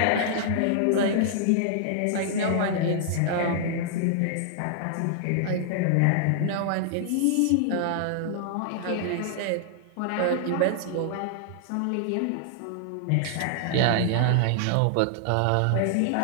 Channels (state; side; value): different; both; correlation -0.01